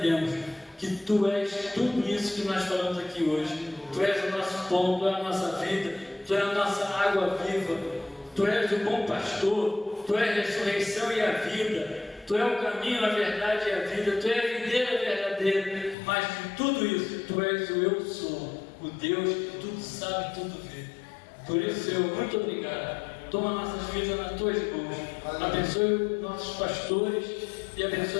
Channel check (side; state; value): right; drops out; at 16.0 s